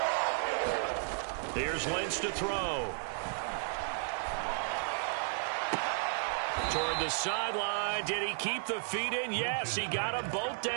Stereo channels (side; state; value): left; silent; digital silence